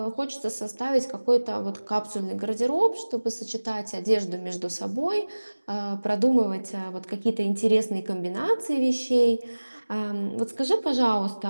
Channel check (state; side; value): inverted; both; correlation -1.00